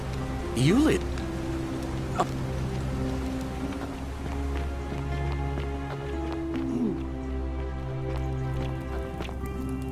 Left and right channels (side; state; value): both; identical; correlation 1.00